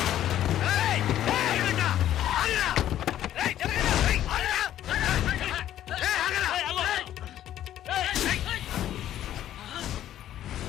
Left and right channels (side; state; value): right; quieter; 12.0 dB